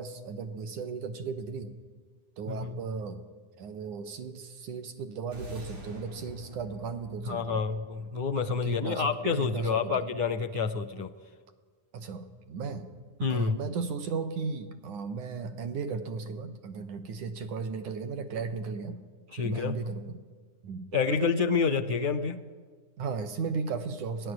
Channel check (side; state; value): left; late; 9.9 ms